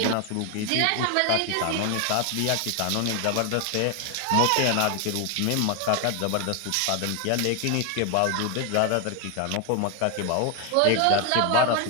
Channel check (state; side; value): different; both; correlation 0.01